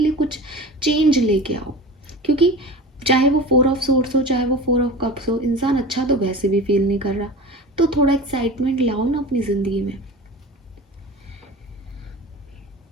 कुछ चेंज लेके आओ। क्योंकि चाहे वो 4 ऑफ सोर्स हो, चाहे वो 4 ऑफ कप्स हो, इंसान अच्छा तो वैसे भी फील नहीं कर रहा। तो थोड़ा एक्साइटमेंट लाओ ना अपनी ज़िंदगी में।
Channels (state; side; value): normal; both; correlation 0.34